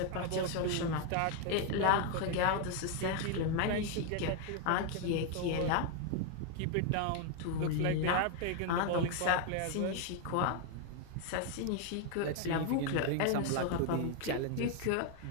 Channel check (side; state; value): both; different; correlation 0.00